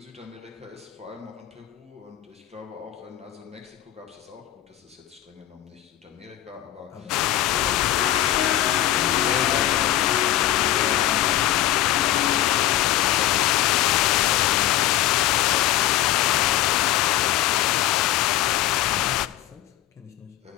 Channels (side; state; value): right; quieter; 13.6 dB